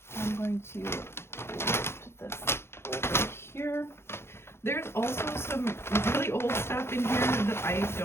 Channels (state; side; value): late; right; 0.12 ms